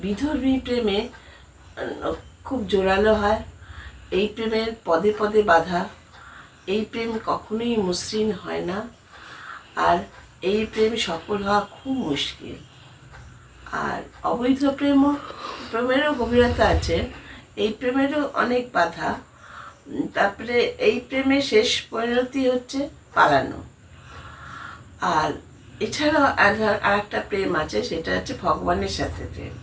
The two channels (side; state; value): both; identical; correlation 1.00